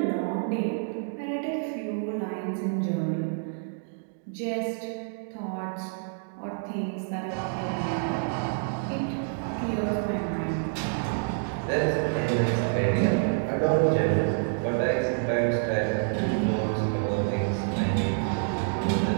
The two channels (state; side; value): silent; left; digital silence